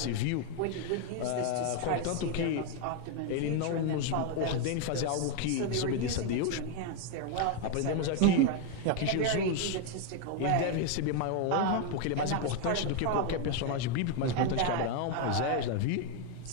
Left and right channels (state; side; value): different; both; correlation 0.01